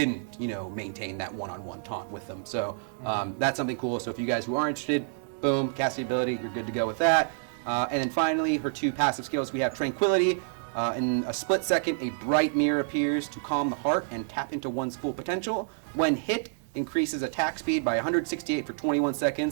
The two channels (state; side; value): silent; left; digital silence